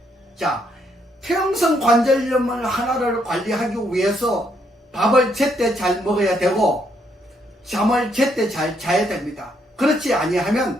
자, 퇴행성 관절염을 하나를 관리하기 위해서 밥을 제때 잘 먹어야 되고 잠을 제때 잘 자야 됩니다. 그렇지 아니하면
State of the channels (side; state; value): both; normal; correlation 0.73